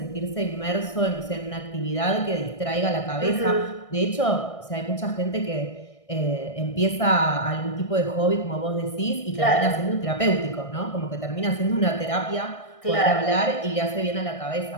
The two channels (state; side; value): late; right; 1.6 ms